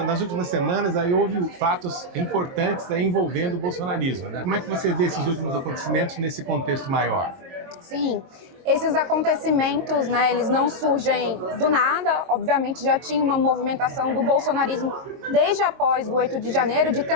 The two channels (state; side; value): late; left; 22 ms